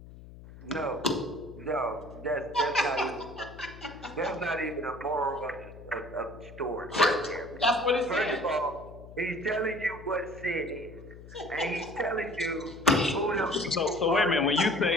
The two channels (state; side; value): noise; left; hum, 17 dB below the sound